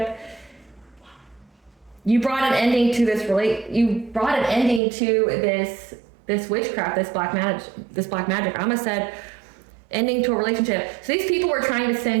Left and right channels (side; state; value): left; drops out; at 4.8 s